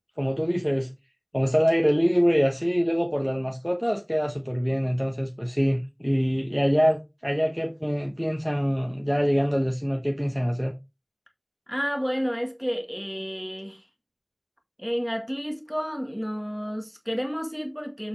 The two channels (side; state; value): both; identical; correlation 1.00